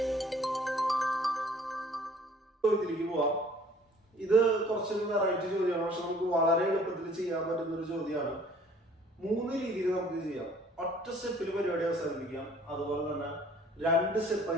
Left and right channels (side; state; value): both; normal; correlation 0.55